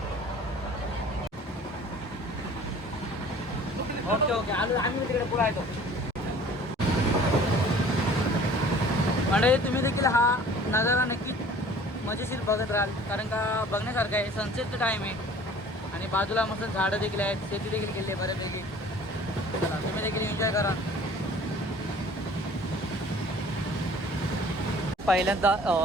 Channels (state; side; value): normal; both; correlation 0.49